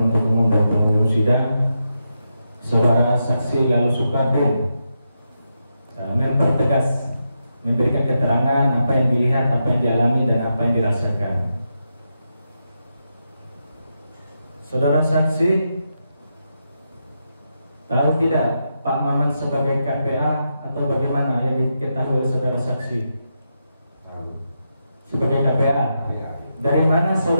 Umum dan pengunjung sidang, saudara saksi Lalu Sukardin mempertegas, memberikan keterangan apa yang dilihat, apa yang dialami dan apa yang dirasakan. Saudara saksi tahu tidak Pak Maman sebagai KPA atau bagaimana yang diketahui oleh saudara saksi? Sebagai KPA. Dari mana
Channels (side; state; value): both; inverted; correlation -0.85